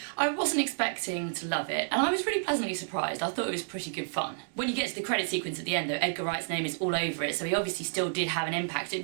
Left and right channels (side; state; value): left; silent; digital silence